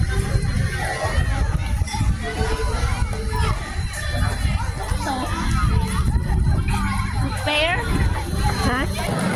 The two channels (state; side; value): identical; both; correlation 1.00